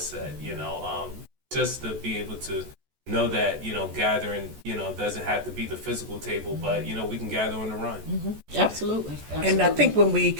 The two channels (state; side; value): late; left; 14 ms